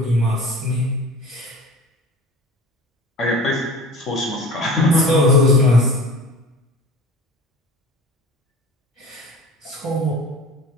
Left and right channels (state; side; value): normal; both; correlation 0.39